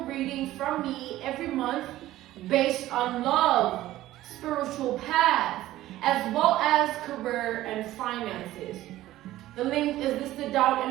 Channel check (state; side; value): quieter; left; 15.2 dB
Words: reading from me every month based on love, spiritual path, as well as career and finances. The link is listed down